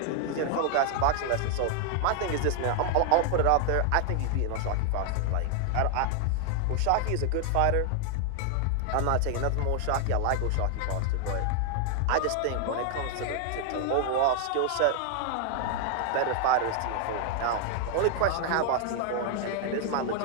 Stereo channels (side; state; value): both; different; correlation 0.00